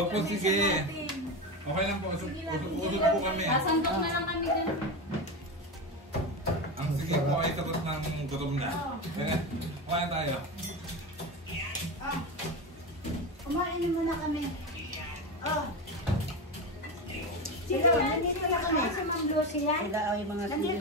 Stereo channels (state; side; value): normal; both; correlation 0.19